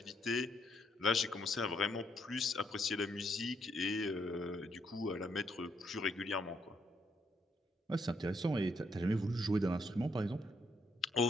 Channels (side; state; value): both; normal; correlation 0.74